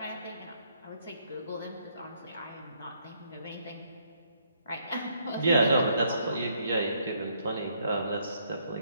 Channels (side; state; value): both; inverted; correlation -0.70